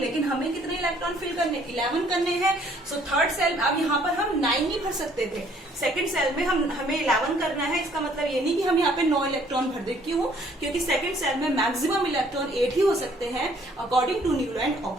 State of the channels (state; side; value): normal; both; correlation 0.62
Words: लेकिन हमें कितने इलेक्ट्रॉन फिल करने, 11 करने हैं। सो थर्ड सेल, अब यहाँ पर हम 9 नहीं भर सकते थे, सेकंड सेल में हमें 11 करना है। इसका मतलब ये नहीं कि हम यहाँ पे 9 इलेक्ट्रॉन भर दे। क्यों, क्योंकि सेकंड सेल में मैक्सिमम इलेक्ट्रॉन 8 ही हो सकते हैं according to Newland and